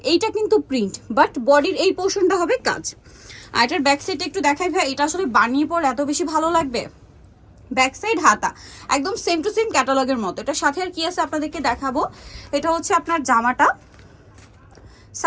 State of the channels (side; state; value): both; identical; correlation 1.00